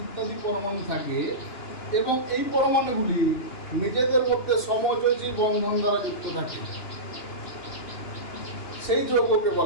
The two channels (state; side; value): late; right; 2.9 ms